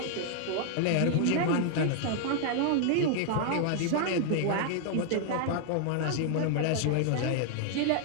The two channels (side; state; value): both; different; correlation 0.00